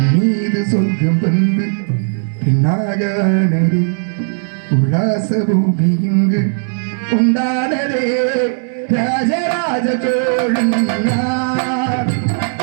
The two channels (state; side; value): silent; left; 66 dB below the other